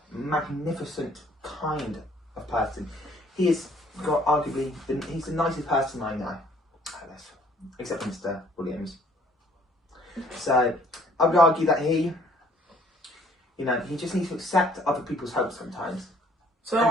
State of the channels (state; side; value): normal; both; correlation 0.60